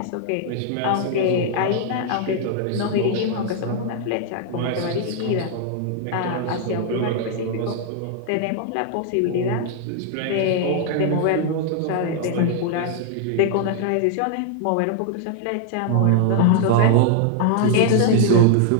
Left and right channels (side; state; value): both; different; correlation 0.00